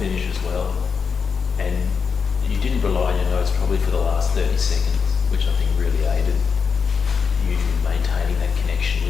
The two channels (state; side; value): quieter; right; 5.8 dB